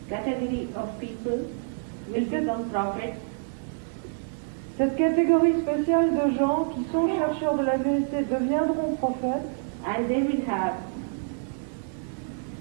category of people will become prophets. Cette catégorie spéciale de gens qui sont chercheurs de la vérité deviendront prophètes And they will have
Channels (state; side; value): silent; left; 60 dB below the other